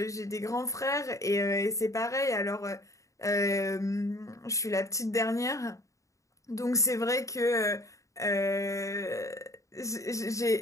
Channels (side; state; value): right; late; 0.15 ms